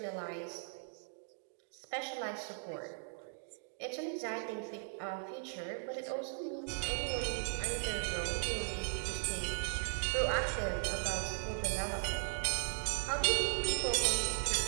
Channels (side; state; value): left; silent; digital silence